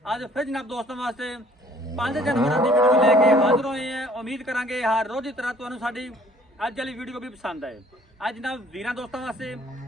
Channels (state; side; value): normal; both; correlation 0.57